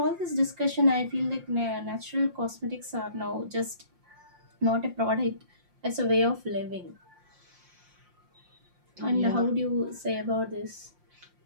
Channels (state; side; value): late; left; 5.7 ms